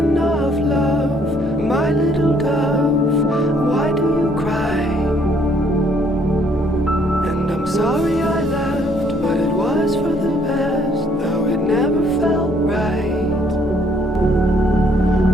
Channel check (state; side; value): normal; both; correlation 0.65